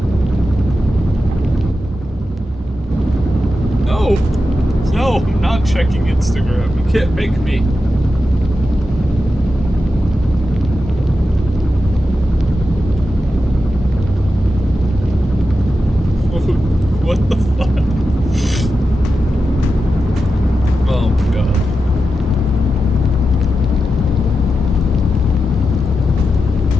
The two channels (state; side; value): normal; both; correlation 0.90